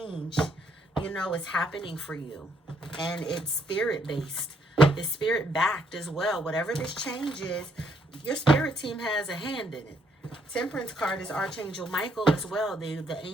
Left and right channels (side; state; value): both; normal; correlation 0.71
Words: you know, is happening for you. And it's spirit-based. It's spirit-backed as well. Whatever this change is, your spirit team has a hand in it. Temperance card is Archangel Michael as well, the